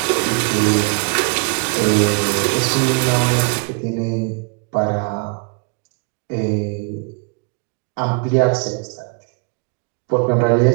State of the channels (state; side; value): quieter; left; 35.0 dB